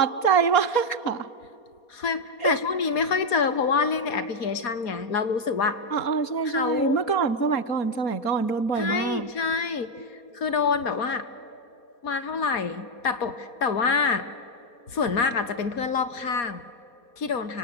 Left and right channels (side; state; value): right; late; 4.2 ms